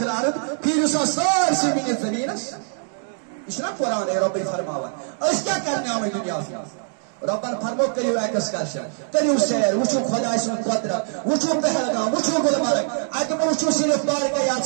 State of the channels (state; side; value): silent; left; 63 dB below the other